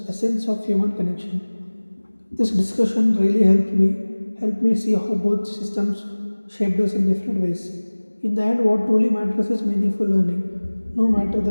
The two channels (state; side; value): inverted; both; correlation -1.00